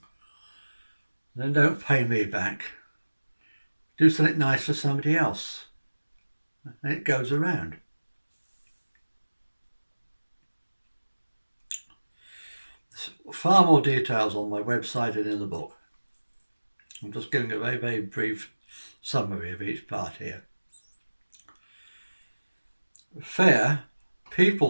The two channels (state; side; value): inverted; both; correlation -1.00